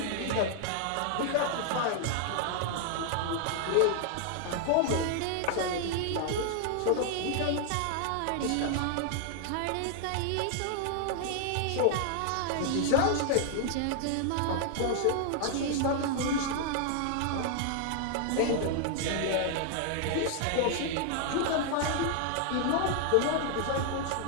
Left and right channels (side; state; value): both; different; correlation 0.00